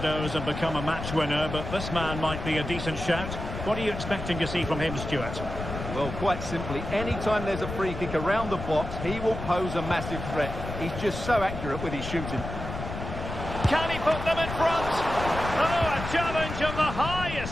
and become a match winner, but this man might be a decent shout. What are you expecting to see from him, Stuart? Well, quite simply, anytime there's a free kick around the box, he will pose a massive threat. He's just so accurate with his shooting. Can he put them in front? Oh, a challenge of the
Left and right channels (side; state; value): left; noise; rumble, 7 dB below the sound